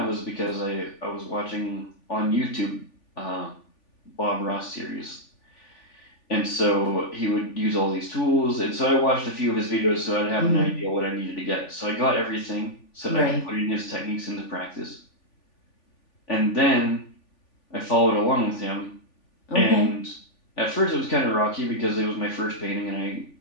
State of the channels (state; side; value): late; right; 3.5 ms